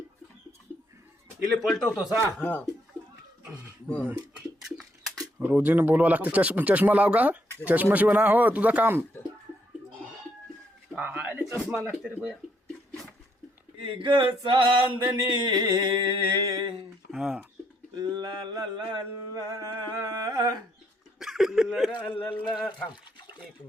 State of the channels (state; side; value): normal; both; correlation 0.73